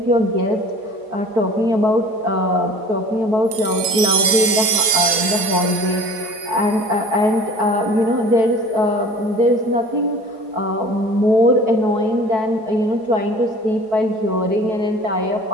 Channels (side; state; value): left; late; 4.7 ms